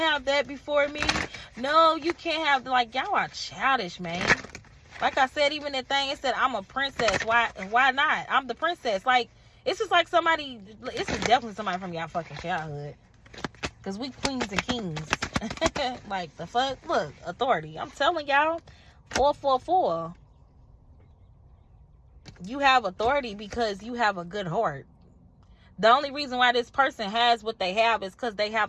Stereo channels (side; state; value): both; identical; correlation 1.00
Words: that before me. No, you can't have... Like, y'all are childish, man. Like I said, even that thing, it said, I'm a princess. Why not? I'm the princess. Like, it's just like somebody... This is definitely somebody from y'all fucking childhood. Because we queens and kings. Like, the fuck? Look, authority. I'm telling y'all. 444. You have authority because you have a good heart. The only reason why this person has what they have is because they